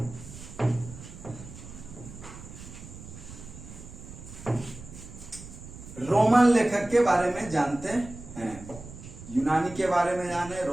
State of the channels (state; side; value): noise; right; rumble, 14 dB below the sound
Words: रोमन लेखक के बारे में जानते हैं, यूनानी के बारे में जाने,